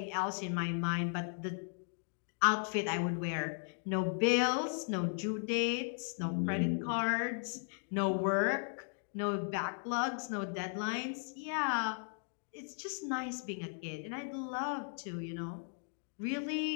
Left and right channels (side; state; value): right; silent; 53 dB below the other